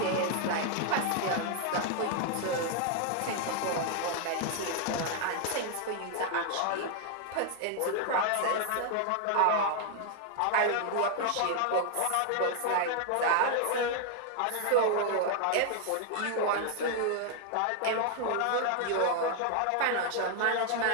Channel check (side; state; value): both; different; correlation 0.00